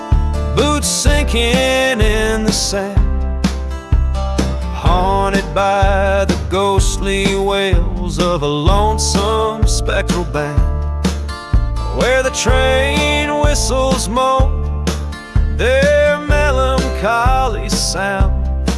boots sinking in the sand, haunted by the ghostly wails of a lonesome spectral band, where the train whistles moan their melancholy sound.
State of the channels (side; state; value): both; identical; correlation 1.00